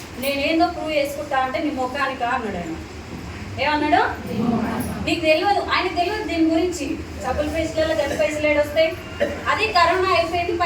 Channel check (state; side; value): identical; both; correlation 1.00